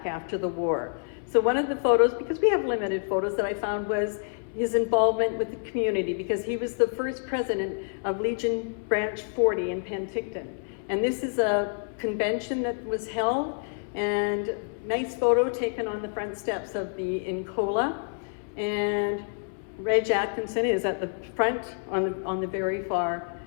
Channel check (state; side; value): silent; right; 60 dB below the other